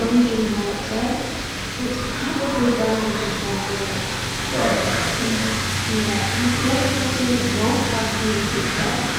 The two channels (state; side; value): identical; both; correlation 1.00